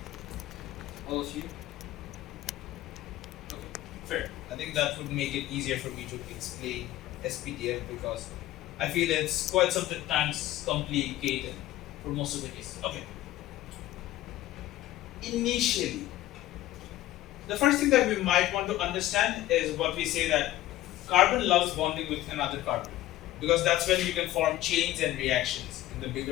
All of you? Okay, fair. I think that would make it easier for me to explain SPDF because I feel it's quite sometimes complicated for most of the cases. Okay. Initially, the first thing that we might want to understand is what we say that carbon loves bonding with another carbon because that's when you can form chains and reactions in the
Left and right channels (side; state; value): right; quieter; 14.8 dB